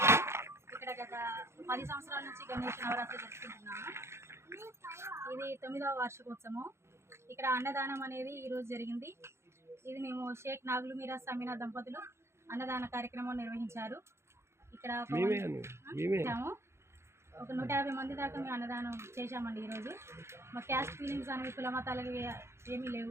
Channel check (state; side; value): late; left; 0.13 ms